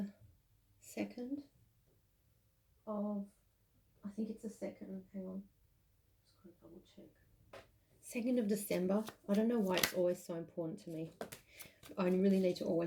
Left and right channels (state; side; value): identical; both; correlation 1.00